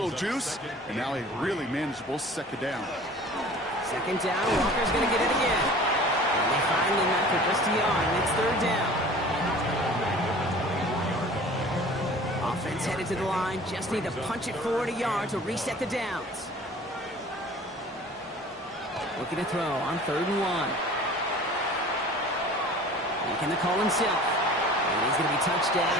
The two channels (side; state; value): both; normal; correlation 0.45